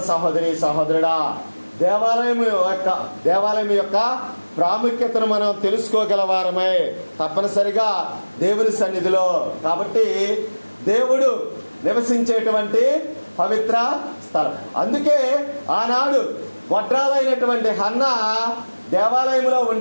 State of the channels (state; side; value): inverted; both; correlation -1.00